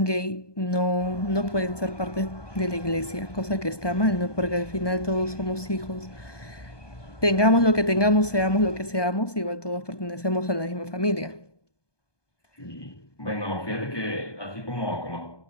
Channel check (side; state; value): right; late; 1.2 ms